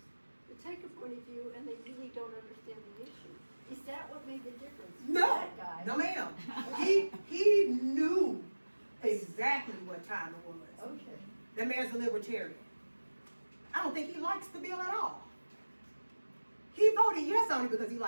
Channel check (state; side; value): inverted; both; correlation -1.00